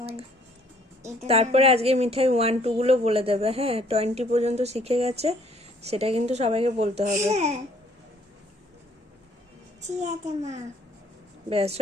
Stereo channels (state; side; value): normal; both; correlation 0.62